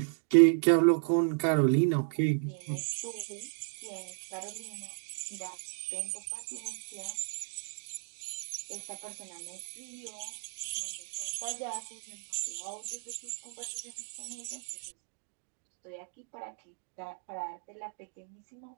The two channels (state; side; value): silent; left; 55 dB below the other